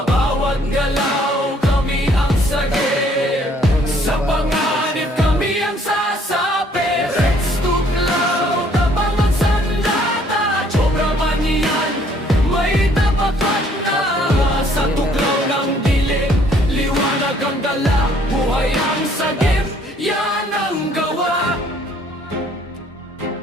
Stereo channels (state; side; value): normal; both; correlation 0.62